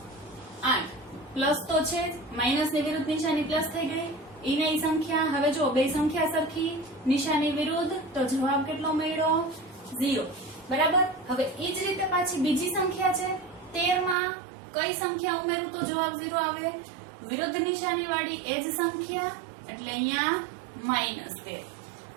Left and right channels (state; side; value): drops out; left; at 14.2 s